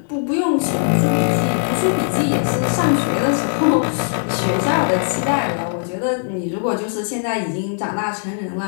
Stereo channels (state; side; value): silent; right; 66 dB below the other